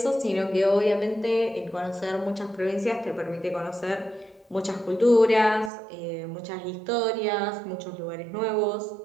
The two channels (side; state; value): left; drops out; at 5.7 s